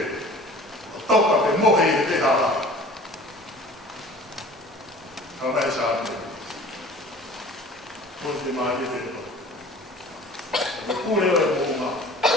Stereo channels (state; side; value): normal; both; correlation 0.45